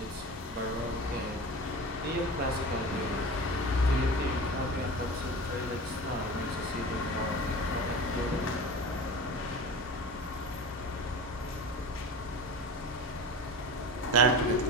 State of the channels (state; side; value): normal; both; correlation 0.32